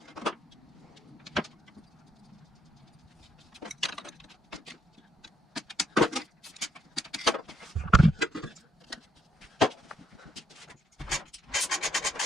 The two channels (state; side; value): normal; both; correlation 0.73